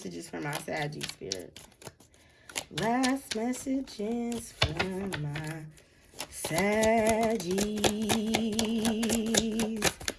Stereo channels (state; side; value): identical; both; correlation 1.00